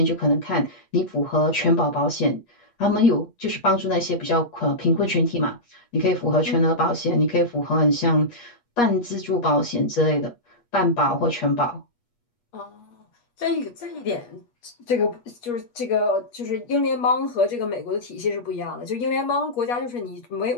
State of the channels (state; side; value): late; right; 8.4 ms